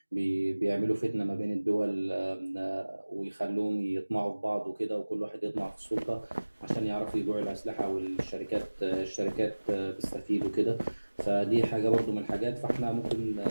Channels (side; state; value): both; inverted; correlation -1.00